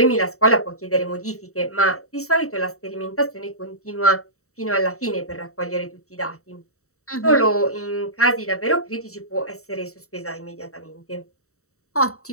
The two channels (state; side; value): late; right; 0.64 ms